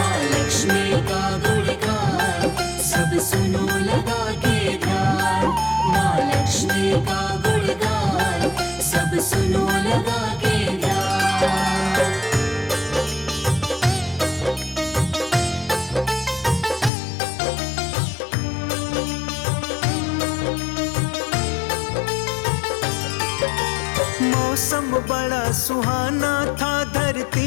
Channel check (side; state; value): right; drops out; at 16.9 s